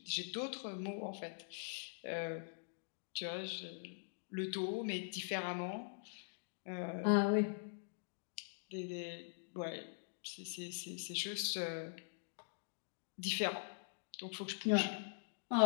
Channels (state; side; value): silent; right; digital silence